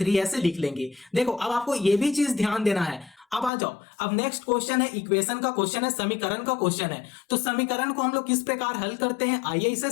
ऐसे लिख लेंगे। देखो अब आपको यह भी चीज ध्यान देना है। अब आ जाओ, अब नेक्स्ट क्वेश्चन है इक्वेशन का क्वेश्चन है, समीकरण का क्वेश्चन है। तो समीकरण को हम लोग किस प्रकार हल करते हैं आइए इसे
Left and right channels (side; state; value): right; drops out; at 3.5 s